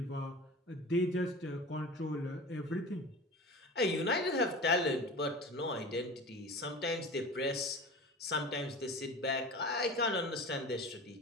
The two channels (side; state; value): both; normal; correlation 0.35